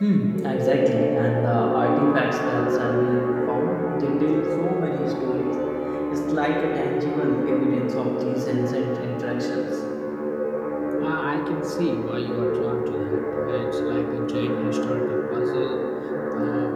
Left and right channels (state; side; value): identical; both; correlation 1.00